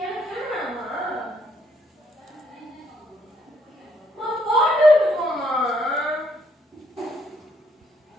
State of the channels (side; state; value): both; normal; correlation 0.70